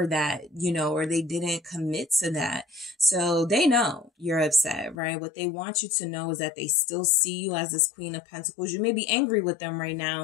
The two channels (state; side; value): drops out; right; at 5.0 s